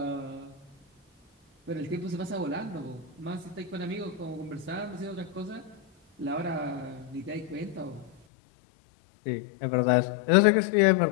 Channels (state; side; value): drops out; right; at 8.1 s